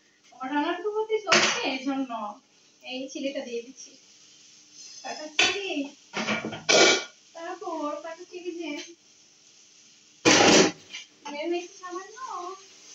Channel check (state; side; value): identical; both; correlation 1.00